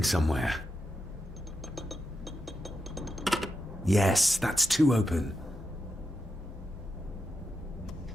somewhere. Yes, that's too open.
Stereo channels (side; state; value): both; normal; correlation 0.87